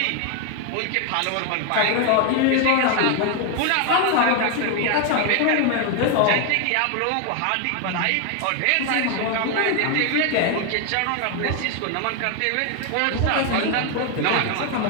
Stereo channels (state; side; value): different; both; correlation 0.01